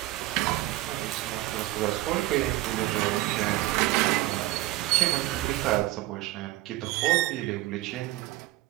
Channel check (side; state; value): left; quieter; 17.3 dB